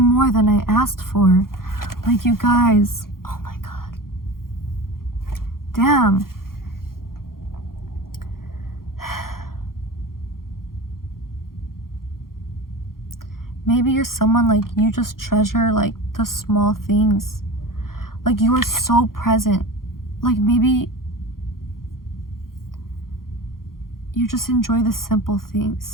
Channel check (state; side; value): late; right; 0.92 ms